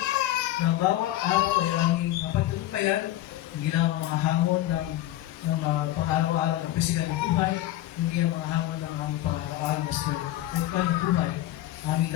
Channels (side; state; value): right; quieter; 14.4 dB